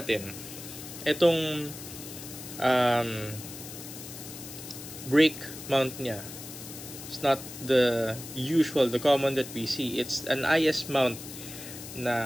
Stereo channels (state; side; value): noise; left; hiss, 12 dB below the sound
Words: itong brake mount niya, it's not the common that we see. It's an IS mount